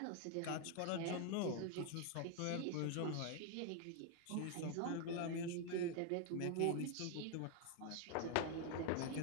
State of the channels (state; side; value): different; both; correlation 0.01